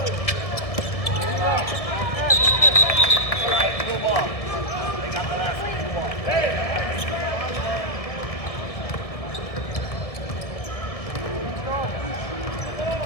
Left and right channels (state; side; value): late; right; 1.7 ms